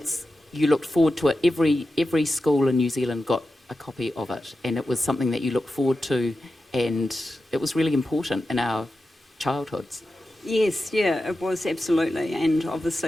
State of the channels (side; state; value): both; normal; correlation 0.92